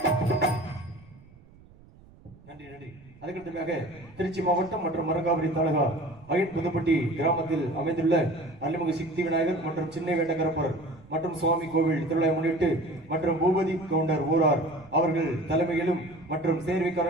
திருச்சி மாவட்டம் மற்றும் மரக்காபுரி தாலுகா வயட் புதுப்பட்டி கிராமத்தில் அமைந்துள்ள அருள்மிகு சித்தி விநாயகர் மற்றும் சின்ன வேட்டகரப்பர் மற்றும் சுவாமி கோவில் திருவிழா முன்னிட்டு மற்றும் பூபதி கவுண்டர் ஊரார் அவர்கள் தலைமையிலும் மற்றும்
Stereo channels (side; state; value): right; noise; rumble, 24 dB below the sound